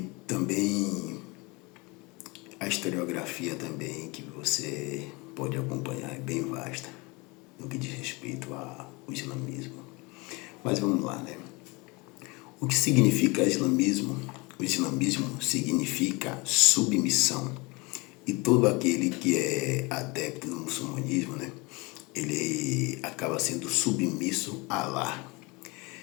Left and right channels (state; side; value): quieter; right; 26.2 dB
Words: também a historiografia também que você pode acompanhar é bem vasta no que diz respeito ao islamismo. Mas vamos lá, né? O que significa islamismo? O islamismo significa submissão. E todo aquele que é adepto do muçulmanismo, né, ele acaba sendo submisso a Allah.